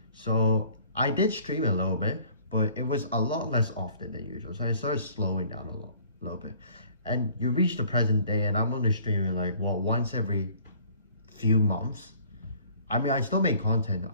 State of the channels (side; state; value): both; inverted; correlation -0.54